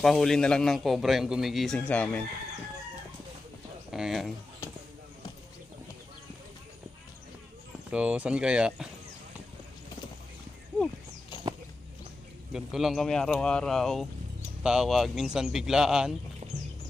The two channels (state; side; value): quieter; right; 3.0 dB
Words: na lang ng cobra yung gumigising sa amin. Ayan. So, saan kaya? Ganito lang kami araw-araw. Tawag, minsan biglaan.